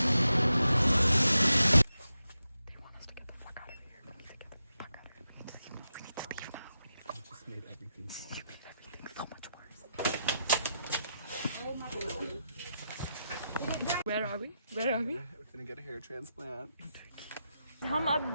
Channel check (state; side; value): inverted; both; correlation -0.87